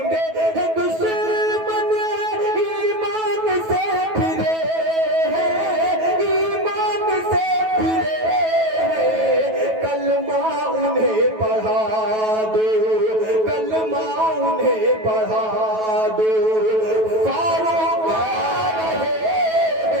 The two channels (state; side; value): late; left; 9.2 ms